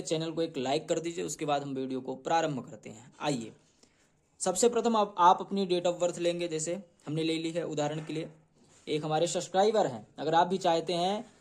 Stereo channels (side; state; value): both; identical; correlation 1.00